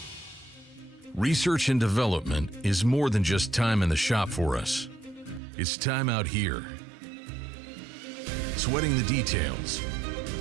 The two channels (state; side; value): drops out; left; at 5.4 s